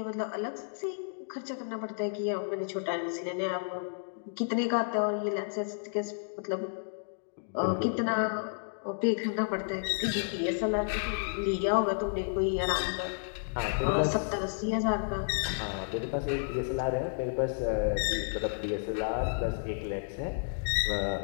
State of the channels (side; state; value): right; silent; digital silence